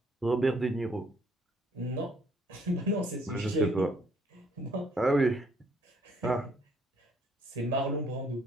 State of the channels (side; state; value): both; normal; correlation 0.65